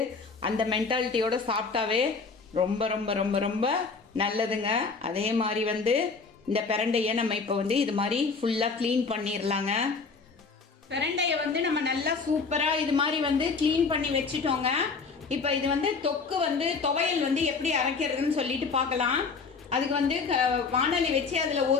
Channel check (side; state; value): right; quieter; 4.7 dB